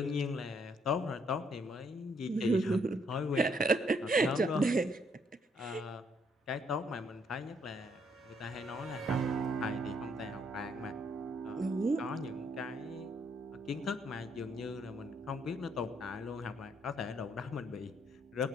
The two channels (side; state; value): both; normal; correlation 0.70